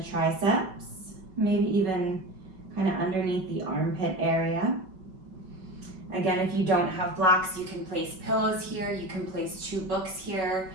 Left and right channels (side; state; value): left; late; 5.3 ms